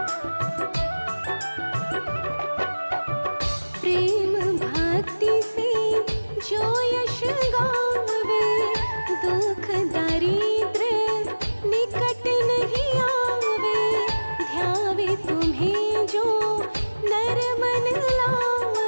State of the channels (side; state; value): both; inverted; correlation -1.00